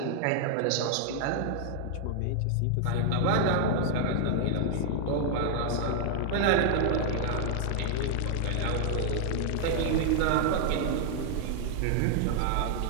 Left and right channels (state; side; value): different; both; correlation 0.00